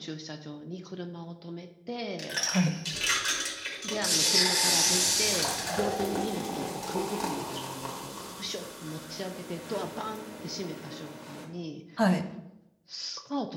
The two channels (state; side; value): identical; both; correlation 1.00